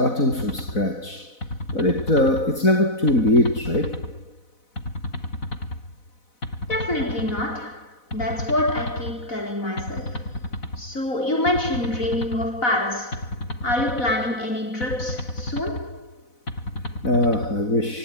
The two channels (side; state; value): right; late; 4.0 ms